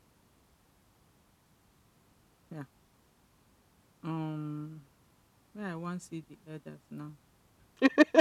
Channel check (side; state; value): both; identical; correlation 1.00